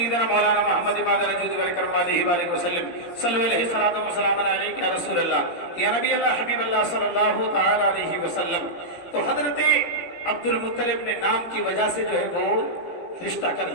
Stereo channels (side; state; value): right; late; 17 ms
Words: مولانا محمد امام الوجود والکرم علیہ وآلہ وسلم، صلو علیہ الصلاۃ والسلام علیک یا رسول اللہ، یا نبی اللہ، حبیب اللہ صلی اللہ تعالی علیہ وسلم۔ تو حضرت عبد المطلب نے نام کی وجہ سے جو ہے وہ رشتہ کر